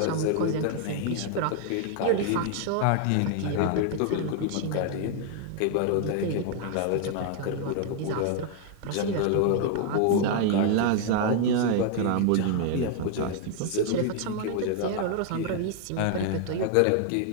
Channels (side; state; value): both; different; correlation 0.00